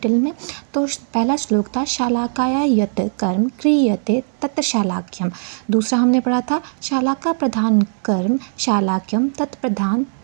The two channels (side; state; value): left; silent; digital silence